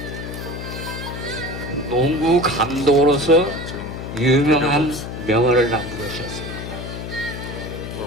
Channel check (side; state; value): left; noise; hum, 8 dB below the sound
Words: 농구 감독으로서 유명한 명언을 남기셨습니다.